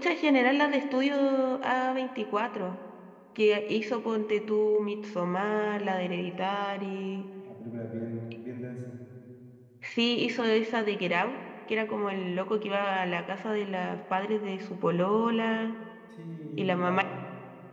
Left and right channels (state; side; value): identical; both; correlation 1.00